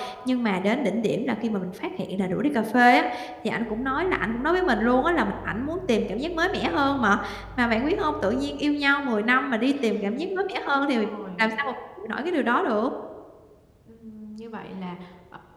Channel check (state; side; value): identical; both; correlation 1.00